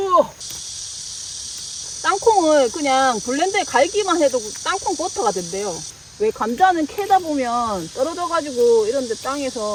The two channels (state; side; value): identical; both; correlation 1.00